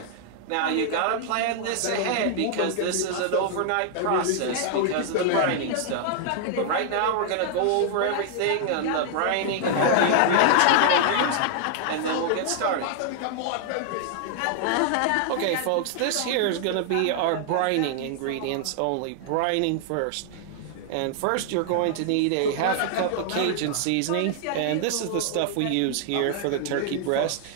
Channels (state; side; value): different; both; correlation 0.00